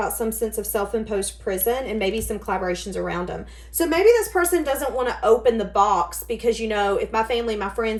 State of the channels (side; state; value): both; identical; correlation 1.00